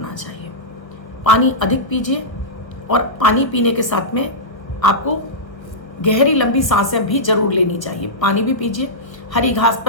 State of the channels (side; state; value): right; late; 1.1 ms